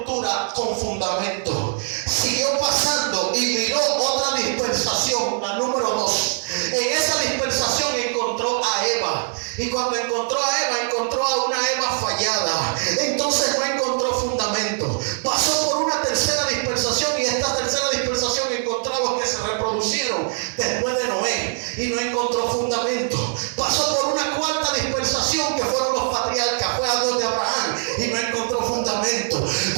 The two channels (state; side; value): silent; left; 63 dB below the other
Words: con fundamento. Siguió pasando y miró otra dispensación, la número 2. En esa dispensación encontró a Eva. Y cuando encontró a Eva, encontró a una Eva fallada. Entonces no encontró fundamento. Pasó por una tercera dispensación y esta tercera dispensación encontró a los que se reproducieron después de Noé y no encontró fundamento. Pasó por una cuarta dispensación que fueron los patriarcas, fue a donde Abraham y no encontró fundamento.